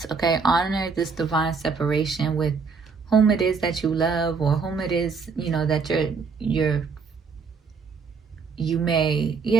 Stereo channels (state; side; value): quieter; left; 5.1 dB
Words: okay? Honor this divine separation with whom it is that you love, or whom it is, you know, that you may,